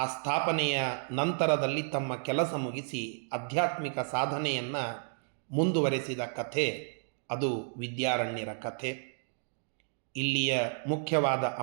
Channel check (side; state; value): left; silent; digital silence